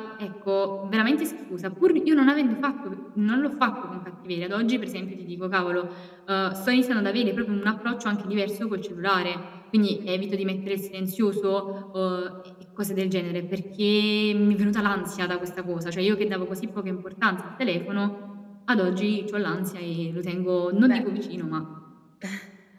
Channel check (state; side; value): identical; both; correlation 1.00